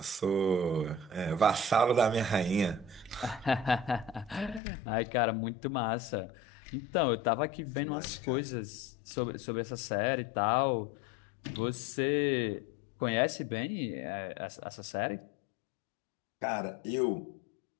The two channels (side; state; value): right; drops out; at 4.6 s